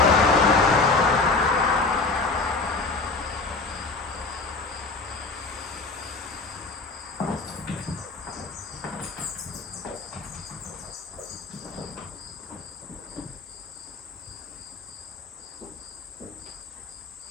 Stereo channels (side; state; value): right; quieter; 3.8 dB